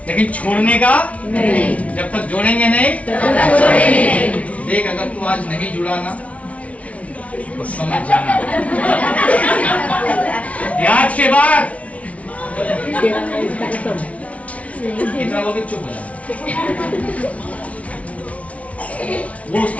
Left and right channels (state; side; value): late; right; 0.065 ms